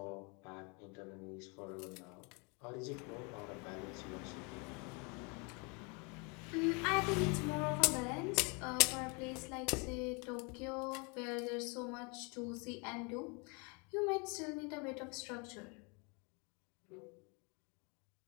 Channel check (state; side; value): quieter; right; 32.4 dB